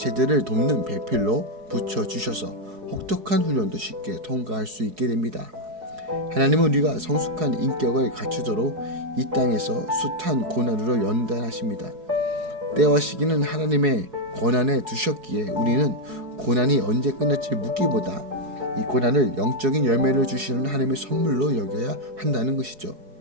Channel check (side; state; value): left; late; 4.7 ms